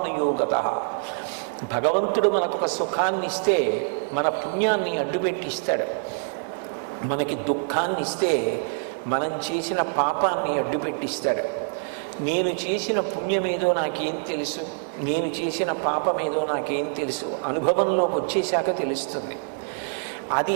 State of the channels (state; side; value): silent; left; digital silence